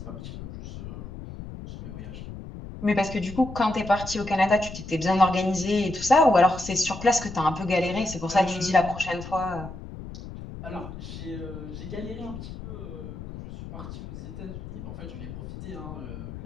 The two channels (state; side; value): noise; left; rumble, 11 dB below the sound